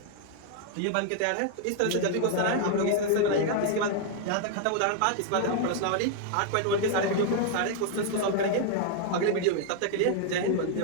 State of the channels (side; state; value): both; different; correlation 0.00